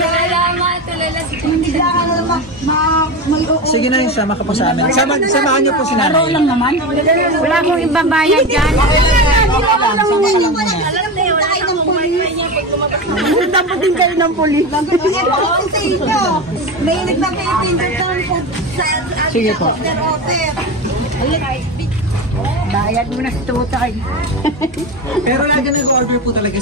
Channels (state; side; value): normal; both; correlation 0.22